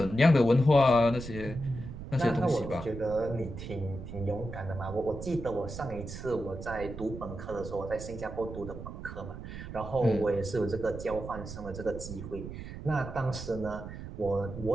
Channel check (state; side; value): noise; right; rumble, 10 dB below the sound